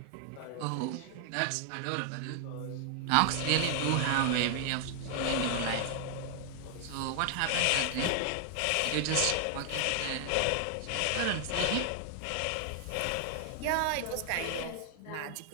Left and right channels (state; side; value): different; both; correlation 0.00